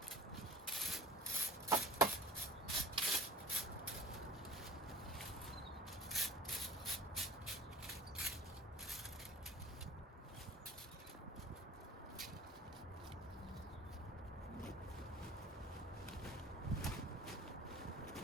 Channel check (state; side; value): normal; both; correlation 0.45